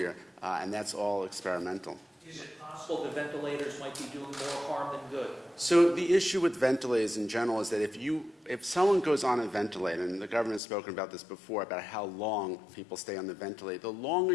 and that's all experimental. Is it possible the ventilators might be doing more harm than good? So the issue with ventilators in general is that if someone goes on a ventilator, and the government has spoken about this before, about how long people stay on the ventilator, the longer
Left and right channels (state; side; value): drops out; right; at 10.6 s